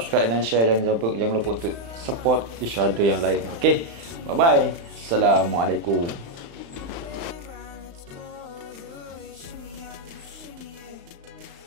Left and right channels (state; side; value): late; left; 35 ms